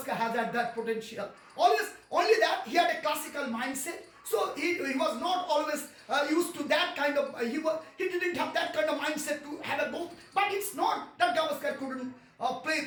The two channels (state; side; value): identical; both; correlation 1.00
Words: has had that potential. Only that he had a classical mindset. So he was not always used to that kind of. He didn't have that kind of mindset to have a goal. But it's not that Gavaskar couldn't play